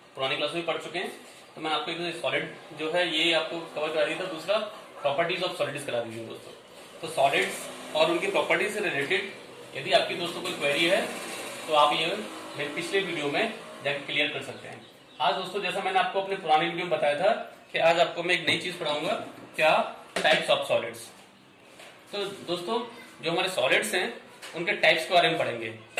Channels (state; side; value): identical; both; correlation 1.00